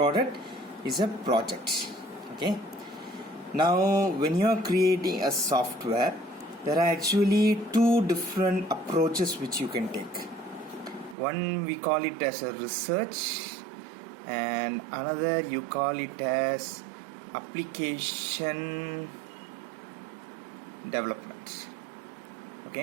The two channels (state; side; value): drops out; left; at 11.2 s